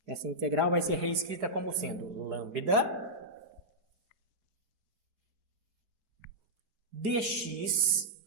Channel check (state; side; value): late; left; 4.9 ms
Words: Essa integral vai ser reescrita como sendo lambda dx.